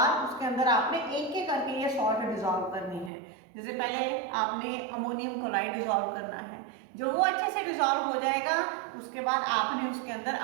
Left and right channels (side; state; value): left; drops out; at 3.1 s